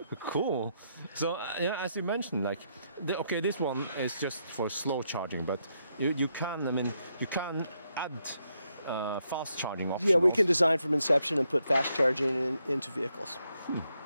Cool. So, yeah, as you mentioned, like, okay, this one is just for slow charging, but you can, I mean, you can add fast charging options. Yeah, we can design from inception and put fast charging into vehicles.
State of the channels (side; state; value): both; inverted; correlation -0.79